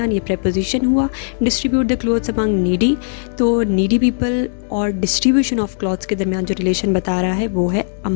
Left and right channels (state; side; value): silent; right; digital silence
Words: ये preposition हुआ। Distribute the clothes among needy, तो नीडी पीपल और डिस्ट्रीब्यूशन ऑफ क्लॉथ्स के दरमियान जो रिलेशन बता रहा है वो है